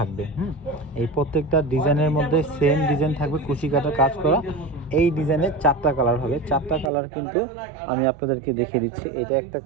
এই প্রত্যেকটা ডিজাইনের মধ্যে সেম ডিজাইন থাকবে, কুশি কাটার কাজ করা। এই ডিজাইনের 4টা কালার হবে, 4টা কালার কিন্তু আমি আপনাদেরকে দেখিয়ে দিচ্ছি। এটা একটা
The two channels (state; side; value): drops out; left; at 6.9 s